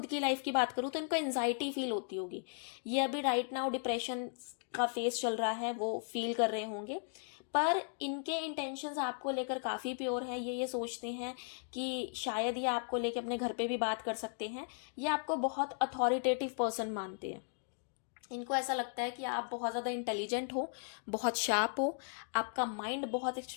की लाइफ की बात करूँ तो इनको एनजाइटी फील होती होगी। ये अभी राइट नाउ डिप्रेशन का फेस चल रहा है, वो फील कर रहे होंगे। पर इनके इंटेंशंस आपको लेकर काफ़ी प्योर है। ये सोचते हैं कि शायद ये आपको लेकर अपने घर पे भी बात कर सकते हैं। ये आपको बहुत अथॉरिटेटिव पर्सन मानते हैं। इनको ऐसा लगता है कि आप बहुत ज़्यादा इंटेलिजेंट हो, बहुत शार्प हो, आपका माइंड बहुत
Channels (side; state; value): right; silent; digital silence